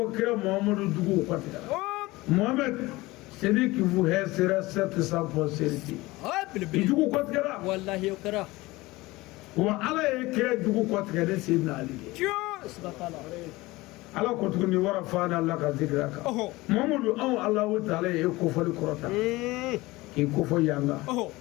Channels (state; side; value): quieter; right; 20.4 dB